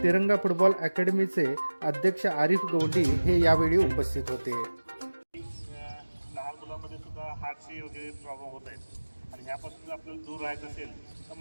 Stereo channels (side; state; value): both; inverted; correlation -1.00